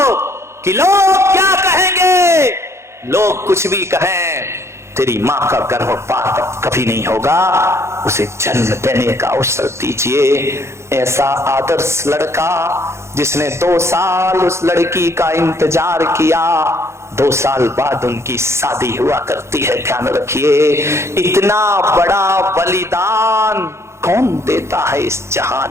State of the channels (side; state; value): left; late; 0.13 ms